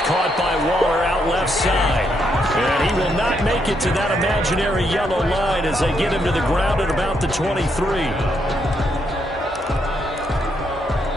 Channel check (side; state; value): both; normal; correlation 0.77